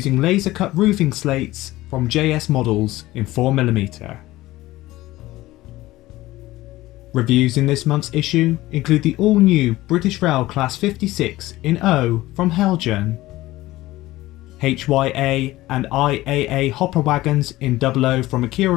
laser cut roofing slates from JS Models in 4mm. Reviews in this month's issue include the all-new British Rail Class 56 in O from Heljan, HYA and IIA hopper wagons in 00 from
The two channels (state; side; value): quieter; right; 17.4 dB